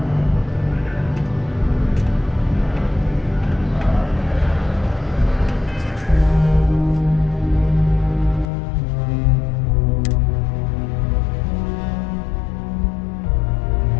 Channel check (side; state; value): right; drops out; at 8.5 s